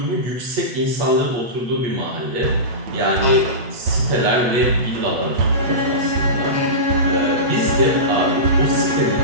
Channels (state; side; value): late; left; 8.2 ms